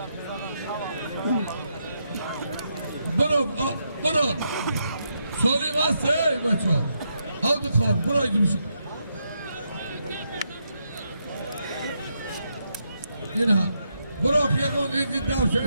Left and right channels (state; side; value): inverted; both; correlation -0.81